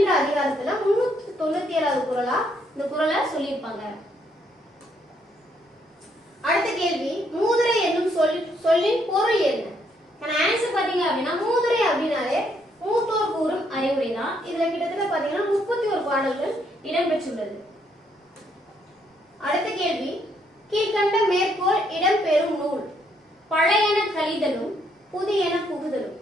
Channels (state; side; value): normal; both; correlation 0.72